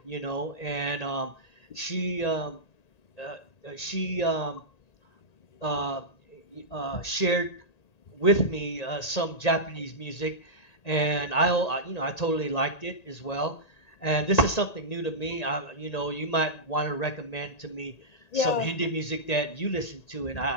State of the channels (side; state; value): right; late; 1.8 ms